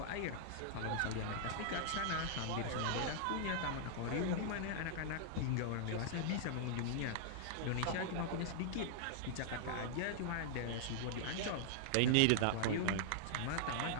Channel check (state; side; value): different; both; correlation -0.01